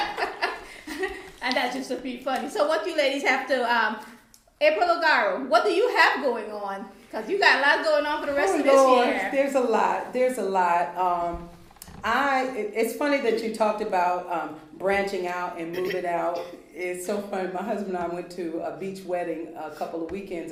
And that's just to be funny. So what you ladies have to, April O'Gara, what do you have going on? Because you got a lot going on for the rest of this year. There's a lot. It's funny that you talked about branching out and moving out. It's so funny. My husband and I went to a beach wedding a couple of weekends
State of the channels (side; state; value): both; identical; correlation 1.00